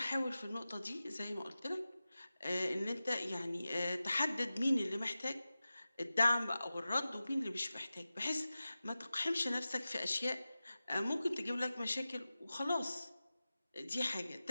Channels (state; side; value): inverted; both; correlation -0.95